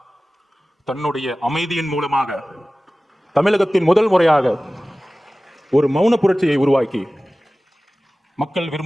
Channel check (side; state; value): both; normal; correlation 0.97